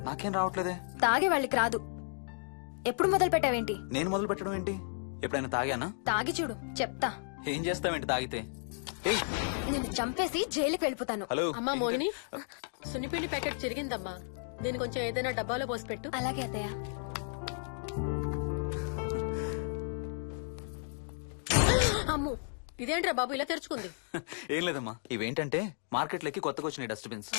నాకేం రావట్లేదే. తాగే వాళ్ళకి రాదు. ఎప్పుడు మొదలు పెట్టావేంటి? నేను మొదలు పెట్టడం ఏంటి? ఎప్పుడైనా తాగానా? తాగి చూడు, చెప్తా. ఏం చేస్తావేంటి తాగితే? ఏయ్, నేను చంపేసి జైలుకి వెళ్ళిపోతాను. హలో. అమ్మా మోహిని, సున్నిపిండి ప్యాకెట్ చిరిగిందమ్మా. దీని కొంచెం ఏదైనా డబ్బాలో పోసి పెట్టు. అలాగే అత్తయ్య. అమ్ము, ఇదేంట్రా బాబు ఇలా తెరుచుకుంది? ఏం లేదమ్మా, ఇవేంటంటే మార్కెట్లోకి కొత్తగా వచ్చినాయి డస్ట్బిన్స్.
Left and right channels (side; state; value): right; silent; digital silence